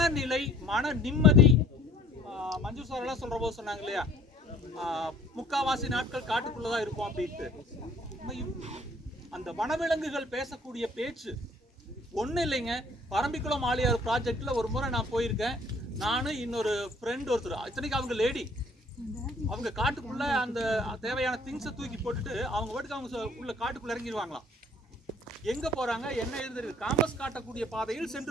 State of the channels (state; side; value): normal; both; correlation 0.55